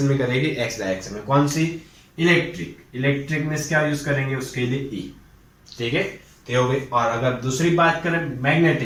में करेगी, एक्स डायरेक्शन में. कौन सी, इलेक्ट्रिक. इलेक्ट्रिक मींस क्या यूज करेंगे उसके लिए, ई. ठीक है, तो हो गई. और अगर दूसरी बात करें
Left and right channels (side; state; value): both; identical; correlation 1.00